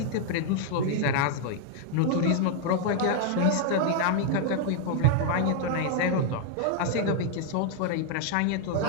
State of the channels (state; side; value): different; both; correlation 0.00